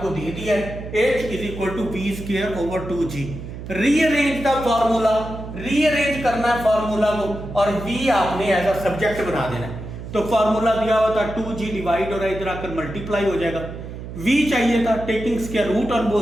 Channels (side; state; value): right; noise; hum, 10 dB below the sound